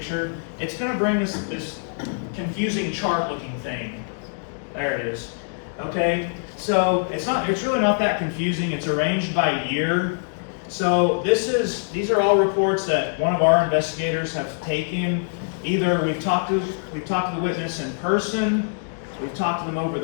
It's going to bring us this confusing chart-looking thing. There it is. Okay, so it's really not that confusing. It's arranged by year. So these are all reports that one of our investigators have taken. Either we've talked to the witness in person, we've talked to them over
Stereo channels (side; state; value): right; silent; digital silence